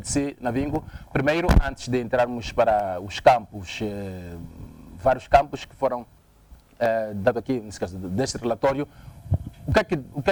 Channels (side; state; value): both; identical; correlation 1.00